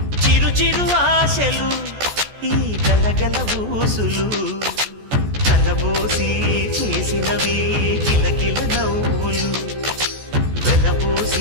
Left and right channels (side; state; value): left; late; 14 ms